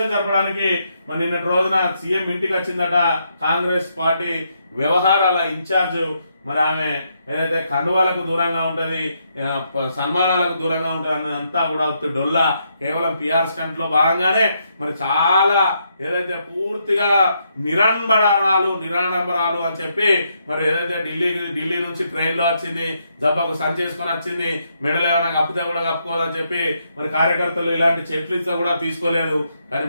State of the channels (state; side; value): inverted; both; correlation -0.77